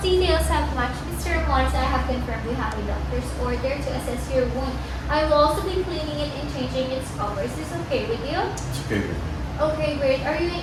have matched. Mr. Ramones, I have confirmed we have a doctor's order to assess your wound. I will also be cleaning it and changing its cover. Is this okay with you? It's okay with me. Okay, great. Are you in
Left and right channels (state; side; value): identical; both; correlation 1.00